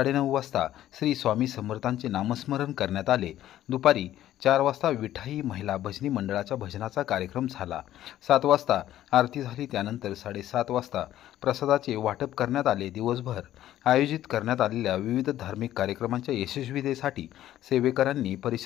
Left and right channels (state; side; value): quieter; right; 12.9 dB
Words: वाजता श्री स्वामी समर्थांचे नामस्मरण करण्यात आले। दुपारी 4 वाजता विठाई महिला भजनी मंडळाच्या भजनाचा कार्यक्रम झाला। 7 वाजता आरती झाली। त्यानंतर 7:30 वाजता प्रसादाचे वाटप करण्यात आले। दिवसभर आयोजित करण्यात आलेल्या विविध धार्मिक कार्यक्रमांच्या यशस्वीतेसाठी सेवेकरांनी